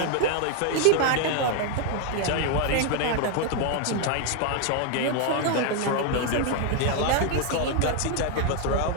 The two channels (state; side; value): different; both; correlation 0.00